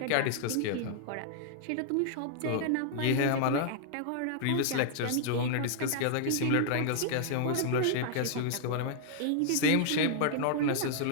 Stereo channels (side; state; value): both; different; correlation -0.01